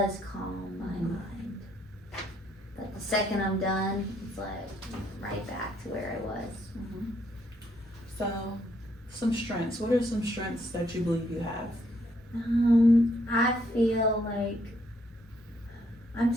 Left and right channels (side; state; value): both; normal; correlation 0.71